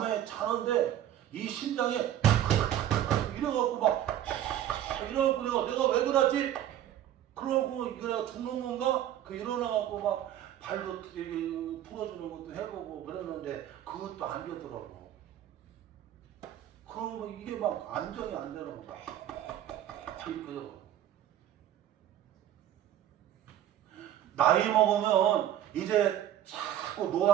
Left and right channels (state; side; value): quieter; left; 11.6 dB